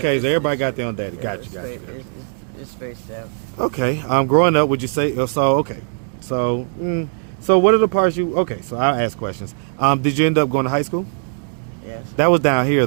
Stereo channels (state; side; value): silent; left; 64 dB below the other